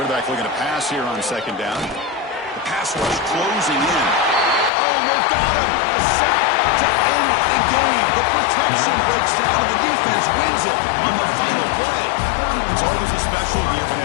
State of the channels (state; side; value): drops out; right; at 4.7 s